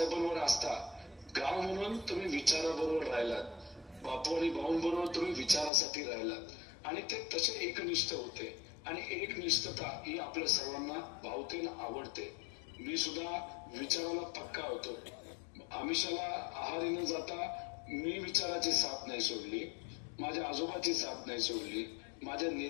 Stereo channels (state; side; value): drops out; right; at 5.7 s